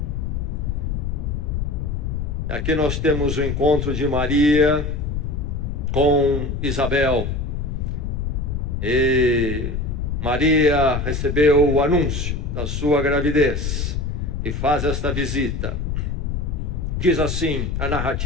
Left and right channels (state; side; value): noise; left; rumble, 2 dB below the sound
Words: Aqui nós temos o encontro de Maria com Isabel. E Maria recebeu o anúncio da sua gravidez e faz esta visita. Diz assim a